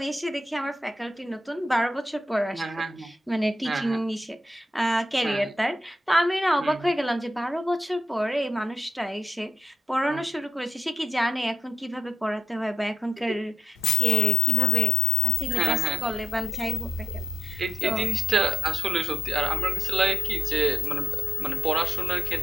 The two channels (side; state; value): both; normal; correlation 0.76